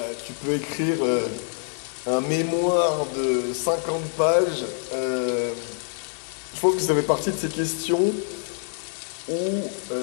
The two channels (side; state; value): right; silent; 61 dB below the other